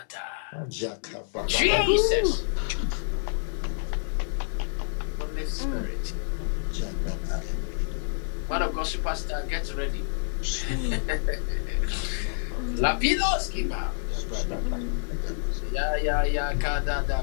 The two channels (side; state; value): right; silent; digital silence